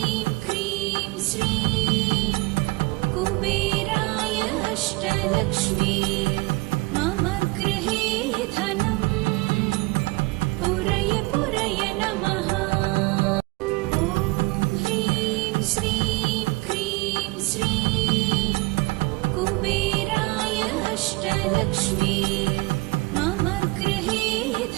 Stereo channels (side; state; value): left; quieter; 24.4 dB